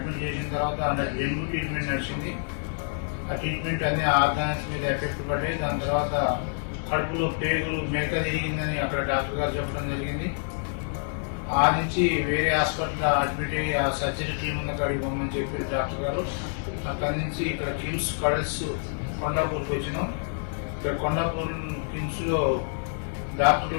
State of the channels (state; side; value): silent; right; 60 dB below the other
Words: చేసిన తర్వాత డెంగ్యూ ట్రీట్మెంట్ నడిచింది. ఆ ట్రీట్మెంట్ అన్ని ఆర్గాన్స్ మీద ఎఫెక్ట్ పడ్డాయి. దాని తర్వాత కడుపులో పేగులు మేక తిరిగిందని అక్కడ డాక్టర్ గారు చెప్పడం జరిగింది. ఆ నుంచి వేరే హాస్పిటల్ అడ్మిట్ అయ్యి ఆ సర్జరీ టీం ఉన్న కాడికి పోమని చెప్పారు డాక్టర్ గారు. అక్కడి నుంచి ఇక్కడ కిమ్స్ కడల్స్ కొండాపూర్కి వచ్చినాం. ఇక్కడ కొండాపూర్ కిమ్స్ లో